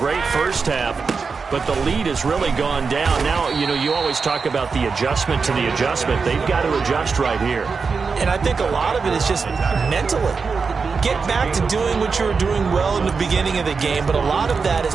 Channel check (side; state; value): left; quieter; 5.0 dB